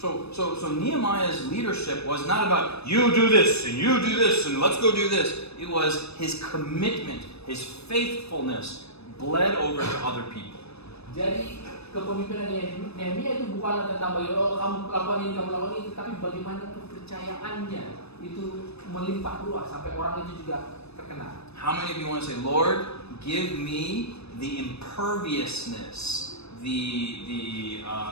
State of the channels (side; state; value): right; late; 0.79 ms